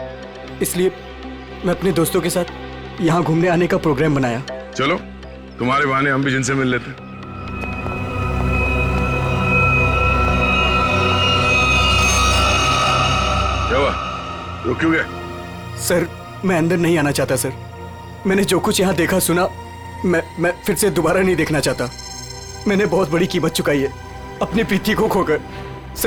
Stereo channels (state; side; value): identical; both; correlation 1.00